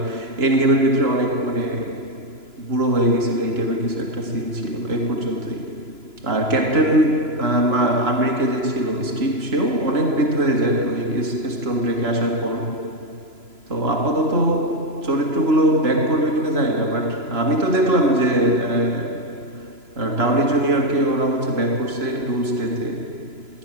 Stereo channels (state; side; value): late; left; 3.0 ms